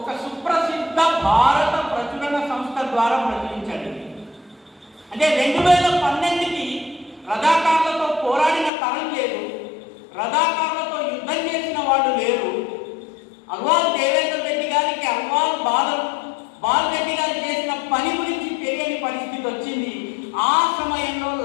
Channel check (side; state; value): right; drops out; at 8.7 s